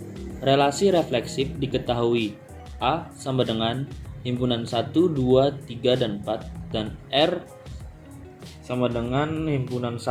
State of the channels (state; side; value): identical; both; correlation 1.00